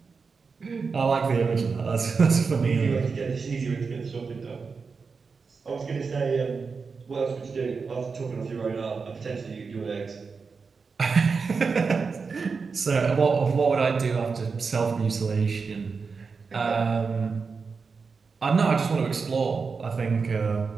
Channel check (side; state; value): left; quieter; 5.0 dB